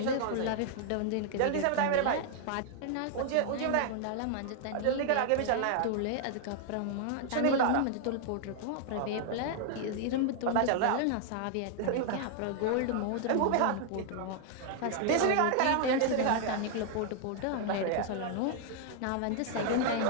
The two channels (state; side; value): different; both; correlation 0.00